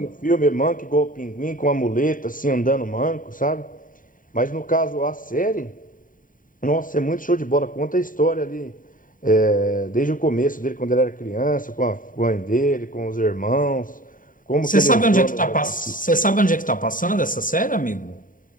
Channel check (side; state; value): right; late; 0.39 ms